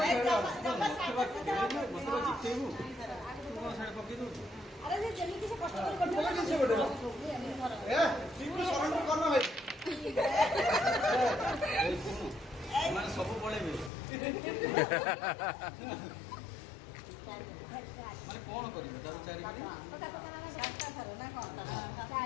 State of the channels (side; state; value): right; drops out; at 13.9 s